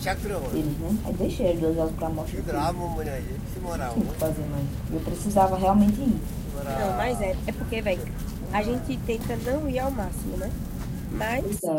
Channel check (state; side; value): identical; both; correlation 1.00